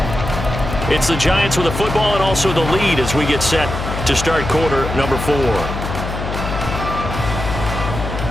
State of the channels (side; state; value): left; noise; hum, 5 dB below the sound